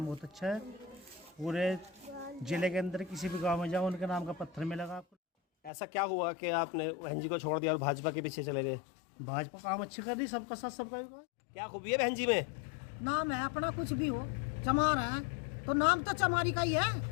बहुत अच्छा है। पूरे जिले के अंदर किसी भी गांव में जाओ उनके नाम का पत्थर मिलेगा आपको। ऐसा क्या हुआ कि आपने बहन जी को छोड़ दिया और भाजपा के पीछे चले गए? भाजपा काम अच्छी कर रही, सबका साथ सबका विकास। क्या खूबी है बहन जी में? नाम है अपना, कुछ भी हो चमार है तो नाम तो चमारी का ही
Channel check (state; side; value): drops out; right; at 5.7 s